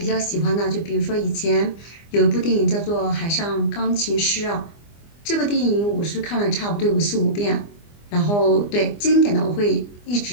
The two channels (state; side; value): late; right; 24 ms